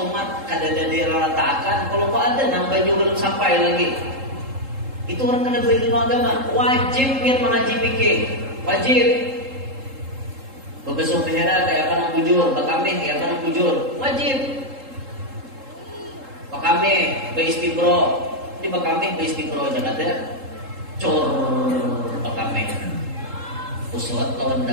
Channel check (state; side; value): late; left; 3.7 ms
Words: mat kada dari ratakan. Kalau kok ada nambah juga belum sampai lagi. Itu orang kena belajar ilmu agama. Wajib biar mengaji fikih. Wajib. Babasuh behira kayak apa nang bujur, bakami kayak apa nang bujur. Wajib. Bakami beistibro, di bakami beistibro jangan ada. Cor bakame uswat lawan